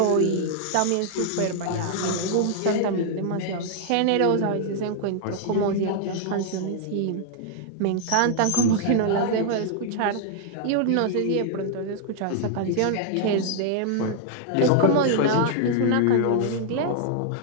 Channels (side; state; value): both; different; correlation 0.00